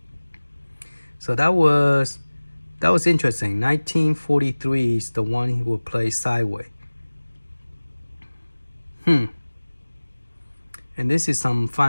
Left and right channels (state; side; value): inverted; both; correlation -1.00